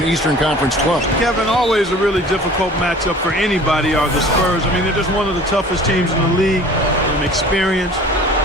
Eastern Conference club. Kevin, always a really difficult matchup for anybody are the Spurs. I mean, they're just one of the toughest teams in the league. Experienced,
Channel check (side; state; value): both; normal; correlation 0.46